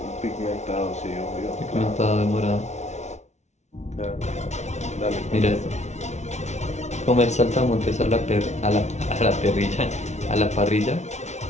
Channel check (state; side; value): late; right; 0.32 ms